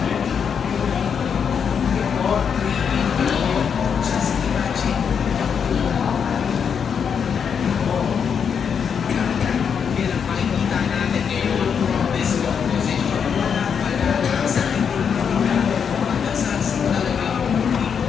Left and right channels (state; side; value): quieter; right; 7.0 dB